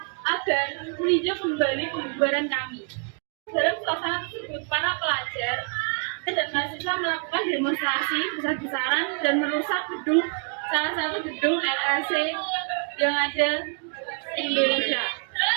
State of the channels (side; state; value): left; quieter; 39.3 dB